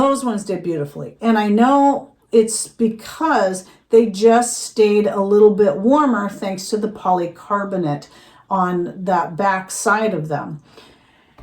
ones did beautifully. And I know it's because they just stayed a little bit warmer thanks to the polycarbonate on that back side of them.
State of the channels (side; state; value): both; identical; correlation 1.00